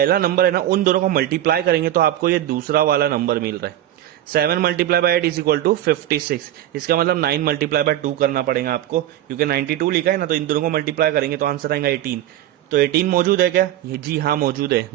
नंबर है ना, उन दोनों को मल्टीप्लाई करेंगे तो आपको ये दूसरा वाला नंबर मिल रहा है। 7 multiply by 8 is equal to 56। इसका मतलब 9 मल्टीप्लाई बाय 2 करना पड़ेगा आपको, क्योंकि 92 लिखा है ना, तो इन दोनों को मल्टीप्लाई करेंगे तो आंसर आएगा 18। तो 18 मौजूद है क्या, ये जी हाँ मौजूद है।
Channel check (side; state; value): left; quieter; 12.8 dB